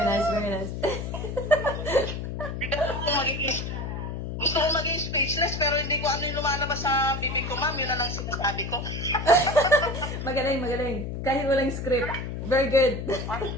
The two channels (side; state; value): left; noise; hum, 5 dB below the sound